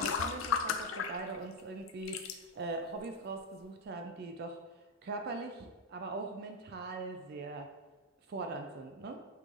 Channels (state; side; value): normal; both; correlation 0.05